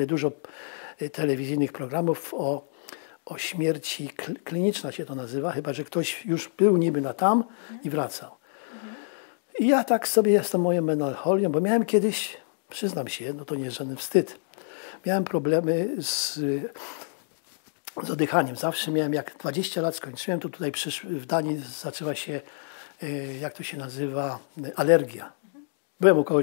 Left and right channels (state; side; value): silent; right; digital silence